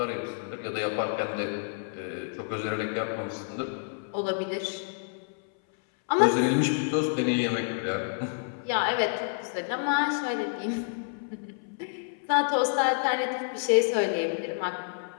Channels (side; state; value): right; silent; 59 dB below the other